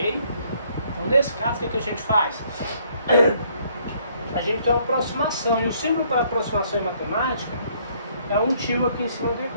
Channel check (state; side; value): inverted; both; correlation -0.66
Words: Então, nesse caso, o que a gente faz? A gente tem uma aproximação. E o símbolo para aproximação em matemática é um tio aqui em cima do